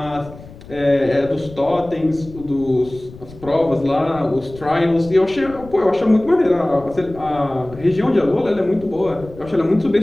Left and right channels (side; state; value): left; noise; rumble, 18 dB below the sound